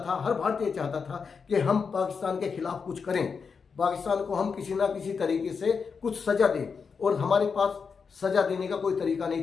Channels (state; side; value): quieter; right; 5.6 dB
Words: था, हर भारतीय चाहता था कि हम पाकिस्तान के खिलाफ कुछ करें, पाकिस्तान को हम किसी ना किसी तरीके से कुछ सजा दें। और हमारे पास सजा देने का कोई तरीका